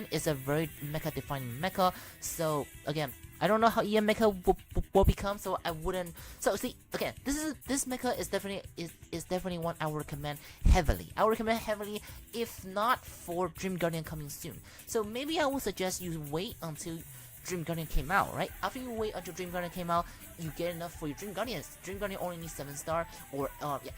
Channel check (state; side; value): identical; both; correlation 1.00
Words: is a very mecha defining mecha. So again, I don't know how EM mecha will become, so I wouldn't. So see, again, this mecha is definitely one I would recommend heavily. If not for Dream Guardian coming soon. So maybe I would suggest you wait until Dream Guardian came out, right? After you wait until Dream Guardian came out, you get enough for your Dream Guardians. Dream Guardian only needs 7 star, or